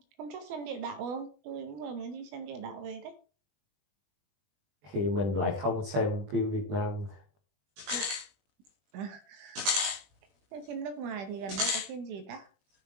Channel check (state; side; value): late; left; 20 ms